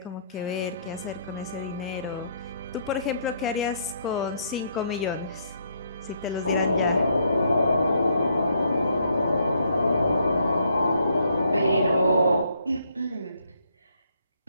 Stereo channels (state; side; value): inverted; both; correlation -0.71